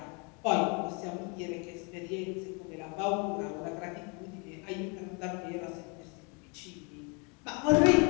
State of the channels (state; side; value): quieter; right; 33.1 dB